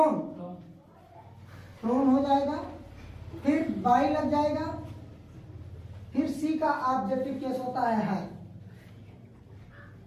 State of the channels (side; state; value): both; identical; correlation 1.00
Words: फ्लोन हो जाएगा, फिर बाई लग जाएगा, फिर सी का ऑब्जेक्टिव केस होता है।